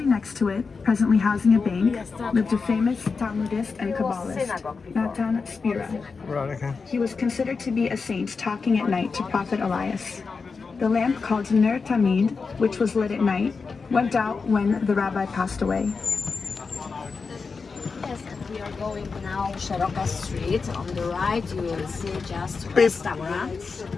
next to it, presently housing a bank, lived a famous Talmudist and Kabbalist, Natan Spira. Right, okay. He was considered to be a saint talking at night to Prophet Elias. The lamp called Ner Tamid, which was lit at night, went out when the rabbi passed away. Yes, and we are going now Szeroka Street. On the right you will see just restaurants.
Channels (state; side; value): quieter; right; 4.8 dB